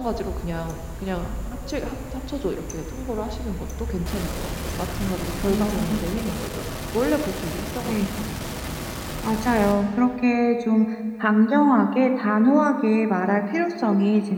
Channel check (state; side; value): identical; both; correlation 1.00